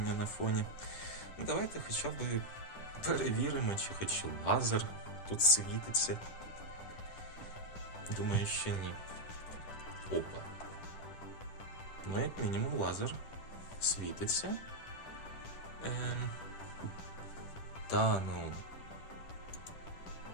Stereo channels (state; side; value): late; right; 10 ms